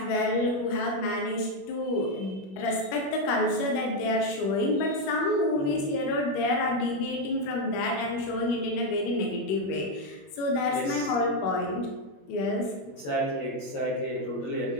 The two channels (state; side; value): late; right; 21 ms